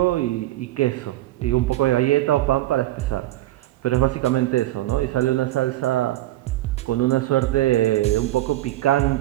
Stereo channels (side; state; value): left; quieter; 16.0 dB